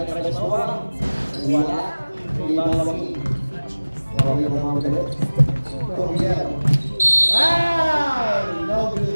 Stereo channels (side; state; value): both; inverted; correlation -1.00